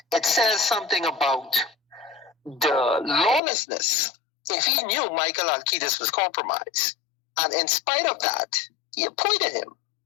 it says something about the lawlessness. If he knew Micheal Halkitis was compromised, and in spite of that, he appointed him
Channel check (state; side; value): drops out; right; at 3.4 s